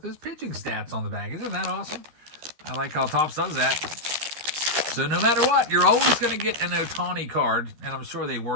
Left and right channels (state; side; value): late; left; 13 ms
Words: his pitching stats on the back. Isn't that awesome? I like how TOPPS does that. So no matter what, you're always going to get an Ohtani card, and I'm sure they